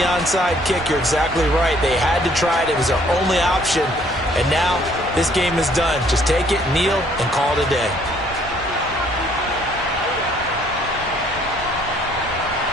onside kick. You're exactly right. They had to try it. It was their only option. And now this game is done. Just take it, kneel, and call it a day.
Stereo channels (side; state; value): both; normal; correlation 0.62